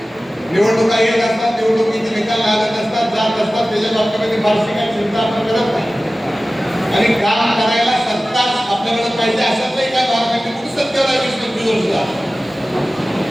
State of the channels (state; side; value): normal; both; correlation 0.96